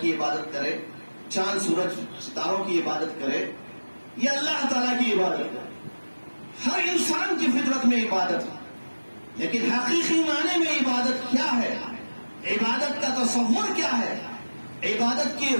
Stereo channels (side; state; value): both; inverted; correlation -1.00